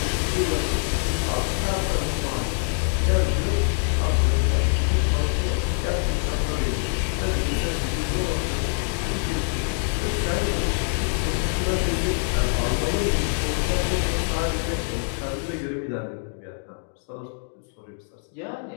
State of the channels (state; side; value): silent; right; 60 dB below the other